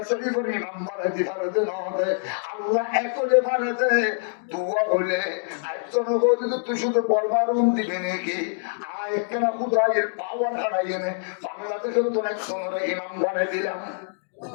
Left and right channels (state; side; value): silent; right; digital silence